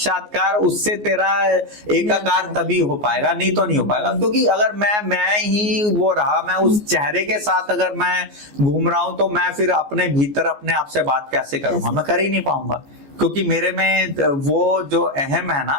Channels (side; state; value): left; late; 14 ms